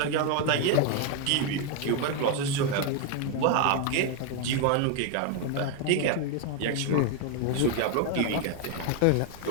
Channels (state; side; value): different; both; correlation 0.01